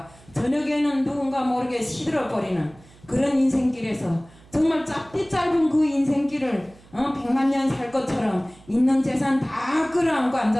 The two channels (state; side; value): noise; right; hum, 25 dB below the sound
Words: 저녁에는 누군가 모르게 시들어버리는 그런 인생길에서 정말 짧디 짧은 그 인생길을 100만 년 살 것처럼 있는 재산 다 끌어안고